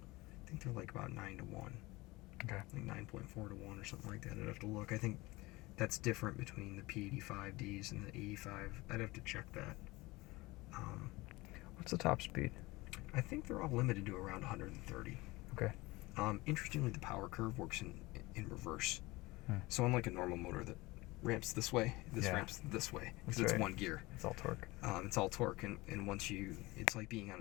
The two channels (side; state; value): right; quieter; 21.5 dB